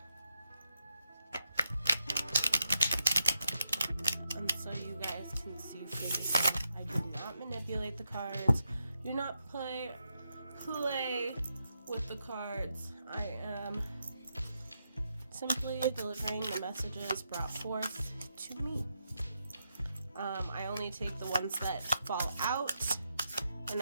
And so you guys can see for yourself, I did not manipulate the cards. Do not play with the cards. I am simply delivering the messages brought forth to me. I only take the ones that fall out, and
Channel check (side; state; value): both; inverted; correlation -0.83